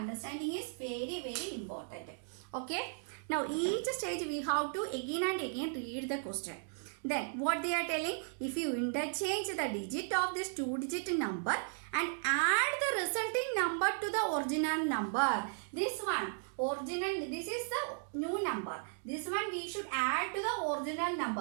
is very, very important. Okay, now each stage we have to again and again read the question. Then what they are telling, if you interchange the digit of this 2-digit number and add the resulting number to the original number. This one, this is the new number. This one we should add to the original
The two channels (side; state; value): left; silent; digital silence